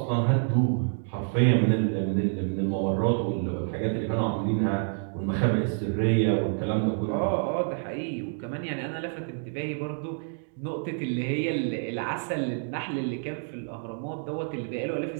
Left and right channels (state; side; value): silent; left; 59 dB below the other